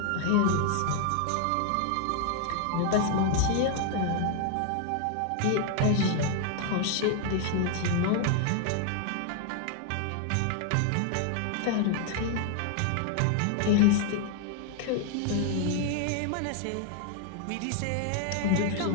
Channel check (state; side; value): different; both; correlation 0.00